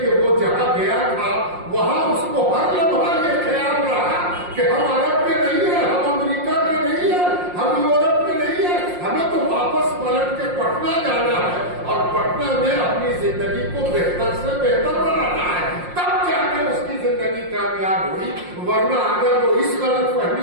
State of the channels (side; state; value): left; late; 5.6 ms